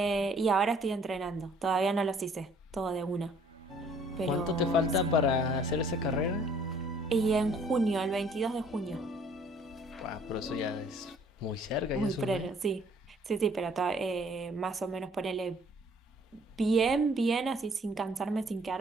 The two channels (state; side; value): normal; both; correlation 0.58